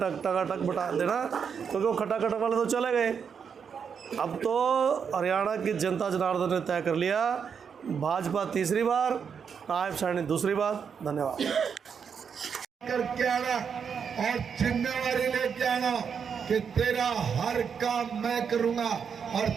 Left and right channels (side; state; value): left; quieter; 6.8 dB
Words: बटा देना, क्योंकि वो खटाखट वाले तो चले गए। अब तो हरियाणा की जनता जनार्दन ने तय कर लिया, भाजपा तीसरी बार, नायब साहनी दूसरी बार। धन्यवाद। करके आना और जिम्मेवारी लेके आना कि तेरा हर काम मैं करूंगा और